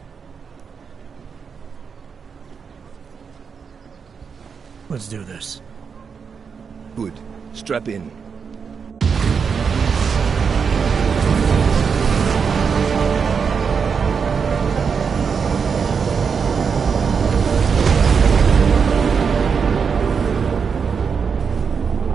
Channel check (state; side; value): quieter; left; 6.1 dB